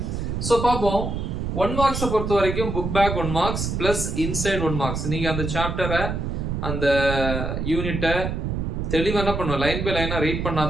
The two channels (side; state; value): right; noise; rumble, 2 dB below the sound